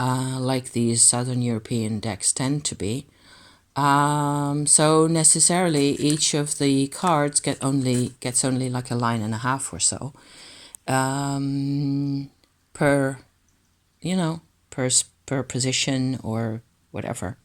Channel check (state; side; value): identical; both; correlation 1.00